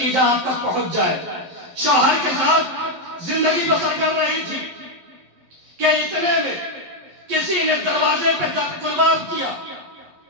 آپ تک پہنچ جائے۔ شوہر کے ساتھ زندگی بسر کر رہی تھی کہ اتنے میں کسی نے دروازے پہ گلباب کیا۔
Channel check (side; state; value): left; late; 11 ms